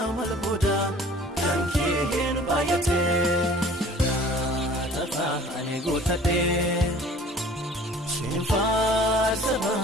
malboda kanke bayate Tafa ane gutate Sinfaarsa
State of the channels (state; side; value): normal; both; correlation 0.49